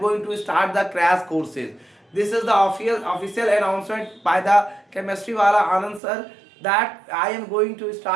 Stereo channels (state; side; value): drops out; left; at 6.0 s